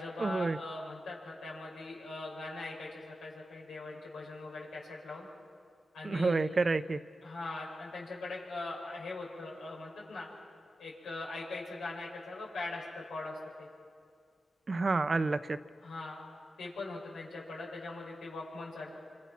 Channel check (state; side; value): normal; both; correlation 0.92